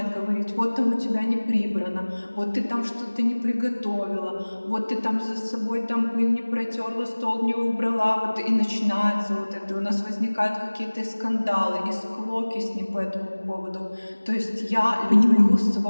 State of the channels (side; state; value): both; inverted; correlation -1.00